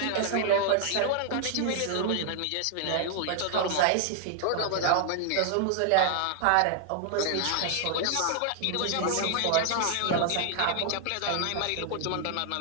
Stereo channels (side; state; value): both; different; correlation 0.00